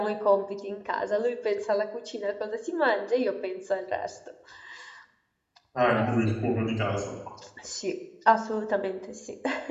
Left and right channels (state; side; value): identical; both; correlation 1.00